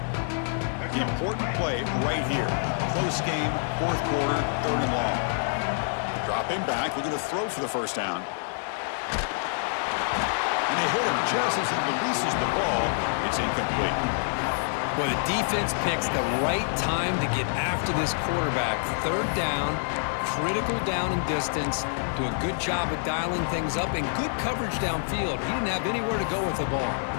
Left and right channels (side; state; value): right; silent; 60 dB below the other